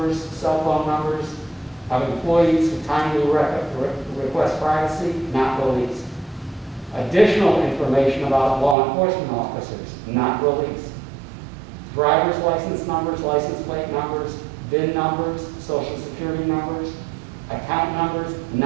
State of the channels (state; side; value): drops out; left; at 8.8 s